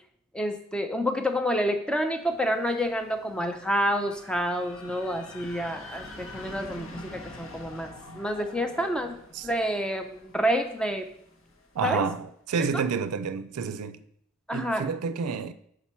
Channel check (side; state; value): both; normal; correlation 0.62